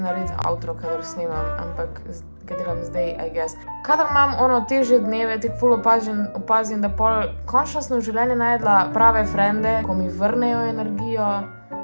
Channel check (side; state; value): both; inverted; correlation -1.00